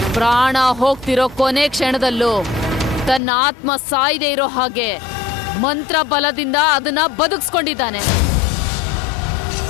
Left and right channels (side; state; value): right; drops out; at 3.2 s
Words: ಪ್ರಾಣ ಹೋಗ್ತಿರೋ ಕೊನೆ ಕ್ಷಣದಲ್ಲೂ ತನ್ನ ಆತ್ಮ ಸಾಯದೆ ಇರೋ ಹಾಗೆ ಮಂತ್ರ ಬಲದಿಂದ ಅದನ್ನ ಬದುಕಿಸ್ಕೊಂಡಿದ್ದಾನೆ.